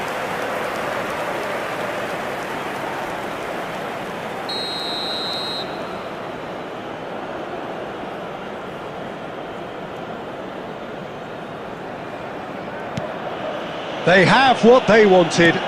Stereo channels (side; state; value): both; identical; correlation 1.00